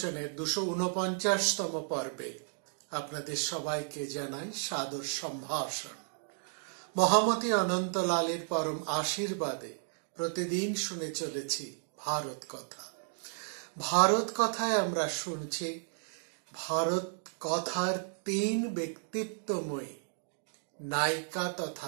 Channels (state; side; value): silent; left; digital silence